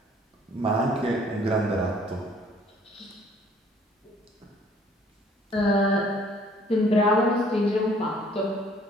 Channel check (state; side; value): normal; both; correlation 0.58